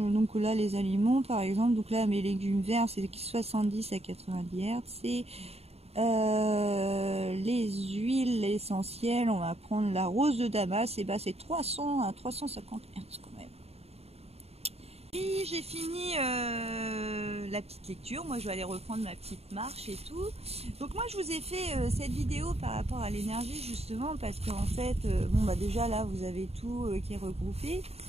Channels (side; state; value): left; late; 0.30 ms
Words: là, les aliments, par exemple, donc là, mes légumes verts, c'est 70 à 90 Hz. Et les huiles essentielles, on va prendre la rose de Damas, et bah c'est 300 à 350 Hz quand même. Puis j'ai fini la petite lecture. Moi je vais aller reprendre ma petite marche et tout. Donc moi je vous ai fait cette vidéo par rapport à l'énergie justement parce qu'en fait déjà là vous avez tout qui est regroupé.